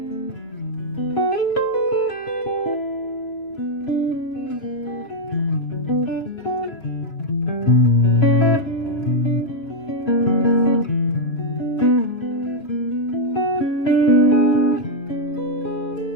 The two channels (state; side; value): late; right; 3.0 ms